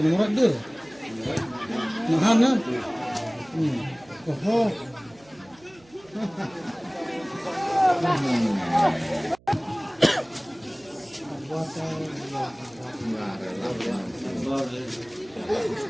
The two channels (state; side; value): noise; right; hum, 28 dB below the sound